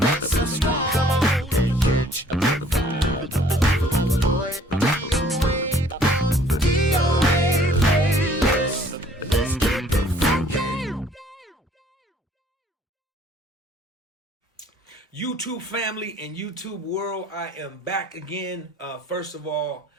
subscribe. Come on and catch a vibe. Boy, DOA playlist. Let's keep it funky. YouTube family and YouTube world, I am back again. First of all,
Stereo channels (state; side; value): normal; both; correlation 0.57